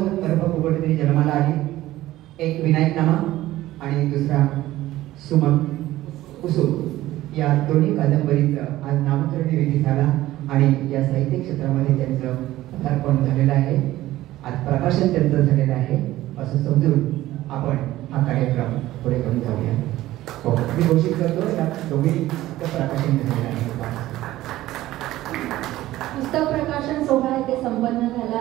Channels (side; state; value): left; quieter; 15.6 dB